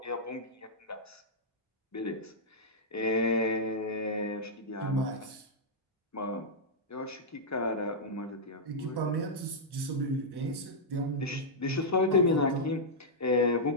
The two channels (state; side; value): normal; both; correlation -0.09